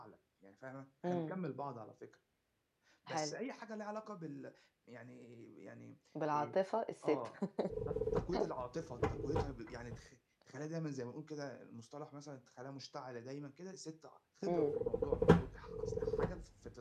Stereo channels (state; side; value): identical; both; correlation 1.00